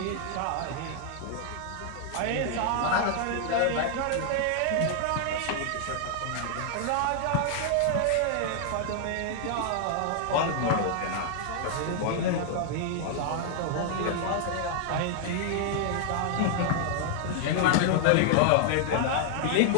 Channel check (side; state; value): both; different; correlation 0.00